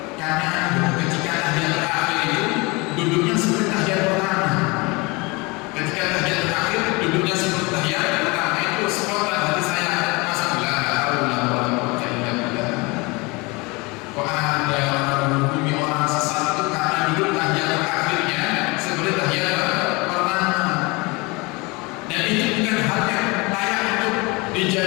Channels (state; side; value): quieter; right; 26.0 dB